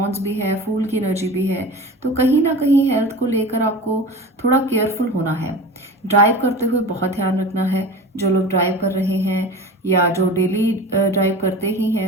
भी है, फूल की एनर्जी भी है। तो कहीं ना कहीं हेल्थ को लेकर आपको थोड़ा केयरफुल होना है। ड्राइव करते हुए बहुत ध्यान रखना है। जो लोग ड्राइव कर रहे हैं या जो डेली ड्राइव करते ही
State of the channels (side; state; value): both; normal; correlation 0.34